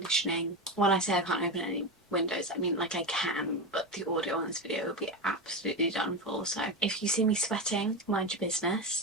When I say I can't open any windows, I mean like I can, but the audio on this video will be absolutely done for. So if you see me sweating, mind your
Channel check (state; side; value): normal; both; correlation 0.17